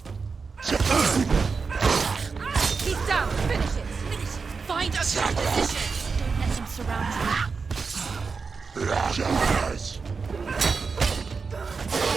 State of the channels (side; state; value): left; quieter; 4.9 dB